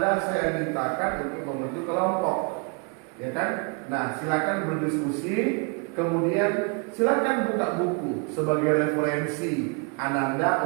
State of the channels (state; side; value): quieter; left; 34.7 dB